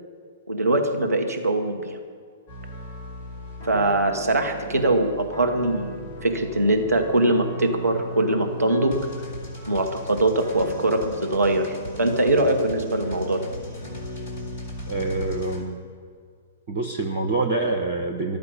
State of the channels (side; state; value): both; inverted; correlation -0.58